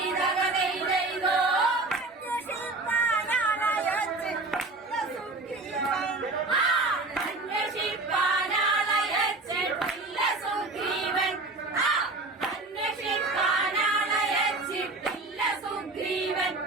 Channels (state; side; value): quieter; left; 3.3 dB